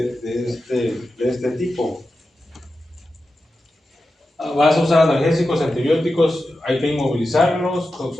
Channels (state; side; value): normal; both; correlation 0.91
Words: este tipo. Vas a usar analgésicos, antibióticos, hay que inmovilizarlos.